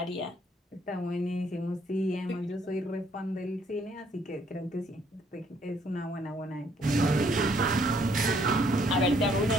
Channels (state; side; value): normal; both; correlation 0.66